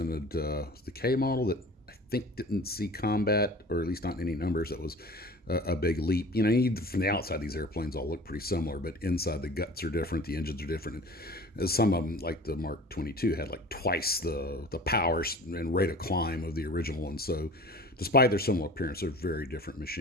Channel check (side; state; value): both; normal; correlation 0.41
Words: the K model that I think didn't see combat, or at least not in any numbers. That was a big leap. You know, from the outside, these airplanes all look pretty similar, but inside the guts are different, the engines are different. And some of them, like the Mark 22, had like twice the power and rate of climb of the original one. So despite their similar appearance, they're very different